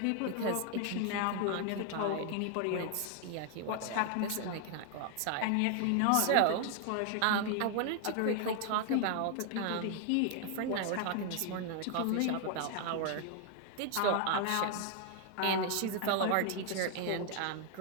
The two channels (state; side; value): different; both; correlation 0.00